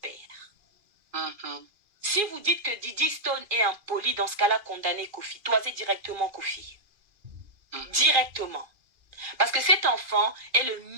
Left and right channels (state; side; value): late; left; 2.4 ms